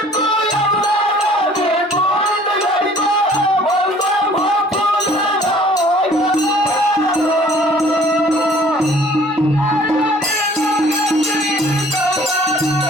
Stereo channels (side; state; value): both; normal; correlation 0.53